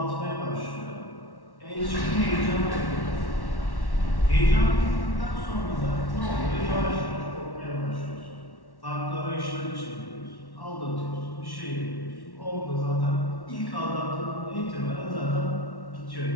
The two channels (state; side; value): late; right; 1.1 ms